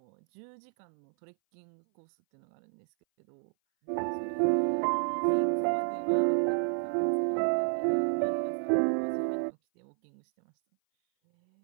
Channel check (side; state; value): left; silent; 58 dB below the other